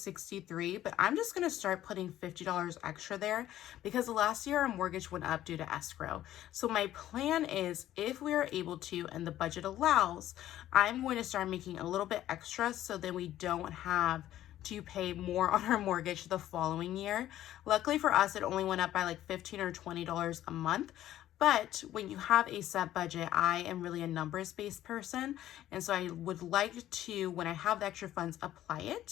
but I'm just gonna start putting $50 extra there, because last year our mortgage went up due to escrow. So my plan is, if we are able to and the budget allows, I'm going to start making a little bit extra, so then we don't have to pay more on our mortgage the following year. Luckily for us, it only went up by like $15 or $20 a month. But when you have a set budget, I am really a numbers-based person. And so I would like to, when I have the extra funds, apply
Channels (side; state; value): right; quieter; 13.1 dB